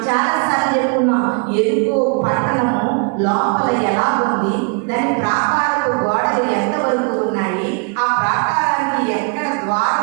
చాలాసార్లు చెప్పుకున్నాం. ఎరుకో పట్టణము లోపల ఎలా ఉంది, దాని ప్రాకారపు గోడలు ఎంతవరకు ఉన్నాయి, ఆ ప్రాకారానికి ఎక్కడ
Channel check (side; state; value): left; quieter; 37.6 dB